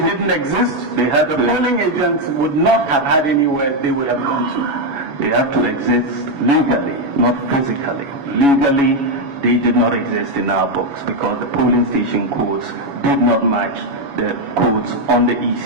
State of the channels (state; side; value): late; left; 7.1 ms